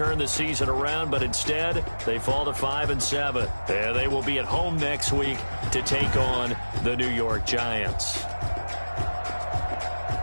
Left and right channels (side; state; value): both; inverted; correlation -1.00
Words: the season around, but instead, they fall to 5-7. And they will be at home next week to take on the New York Giants.